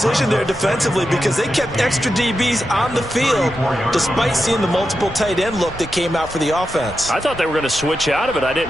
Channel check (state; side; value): normal; both; correlation 0.88